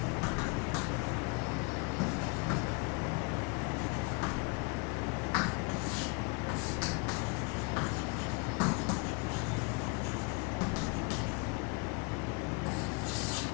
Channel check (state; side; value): quieter; right; 30.9 dB